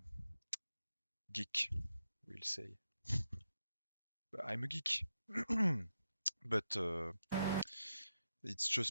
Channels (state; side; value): inverted; both; correlation -0.87